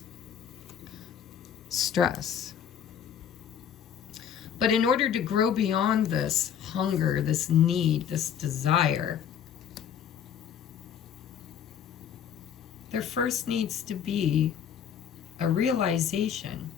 Stress. But in order to grow beyond this hunger, this need, this desire, there first needs to be a realization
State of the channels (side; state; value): right; quieter; 8.6 dB